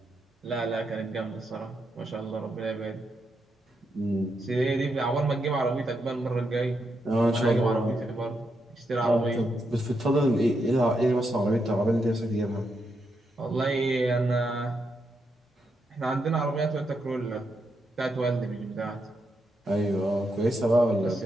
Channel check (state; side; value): normal; both; correlation 0.82